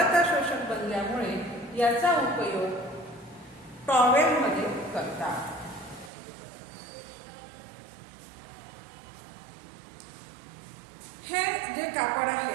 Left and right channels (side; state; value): left; drops out; at 6.1 s